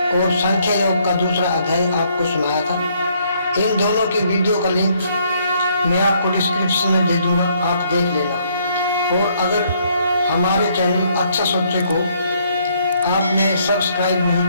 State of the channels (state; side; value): inverted; both; correlation -0.68